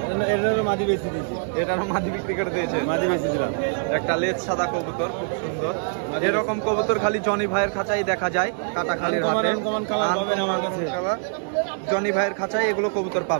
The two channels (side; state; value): left; silent; digital silence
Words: এটারও মাদি বেশি দিয়েছি, এটারও মাদি বিক্রি করে দিয়েছে। মাদি বেশি দিলাম। একটা লেজ সাদা কবুতর, খুব সুন্দর। এরকম কবুতর খালি জনি ভাইয়ের খাঁচায় দেখা যায়, কাটাখালির হাটে। আনকমন কালার পাবেন আমার কাছে। জনি ভাইয়ের খাঁচায় এগুলো কবুতর